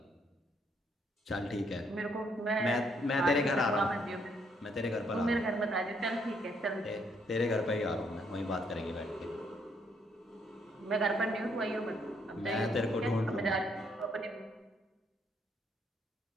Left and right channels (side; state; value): both; normal; correlation 0.71